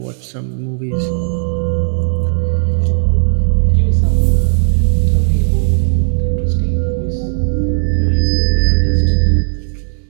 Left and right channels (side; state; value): left; silent; digital silence